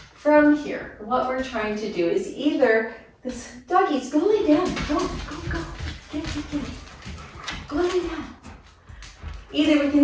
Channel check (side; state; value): both; identical; correlation 1.00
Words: From here, what we're trying to do is either this doggies, go lay down. Go. Get. Go lay down. Either we